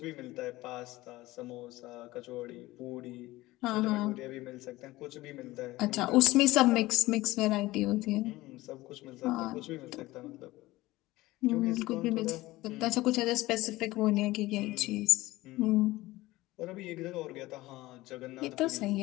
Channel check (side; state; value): right; quieter; 18.5 dB